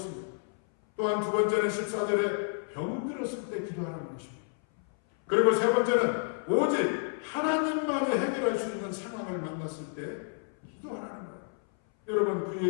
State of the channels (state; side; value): silent; right; 58 dB below the other